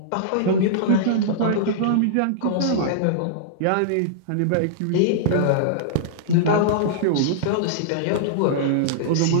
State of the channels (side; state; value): both; different; correlation -0.02